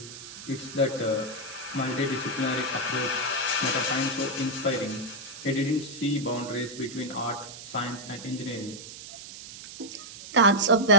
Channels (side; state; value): right; noise; hiss, 13 dB below the sound